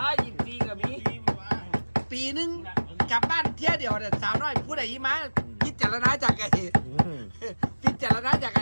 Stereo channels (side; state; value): both; inverted; correlation -1.00